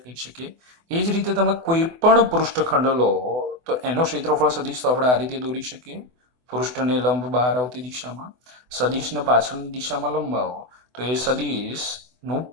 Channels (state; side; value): late; left; 24 ms